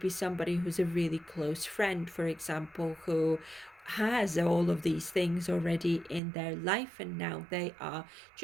somebody who's a really close friend, for example, who has all of these things already in their life, and now they are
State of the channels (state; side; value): drops out; left; at 6.2 s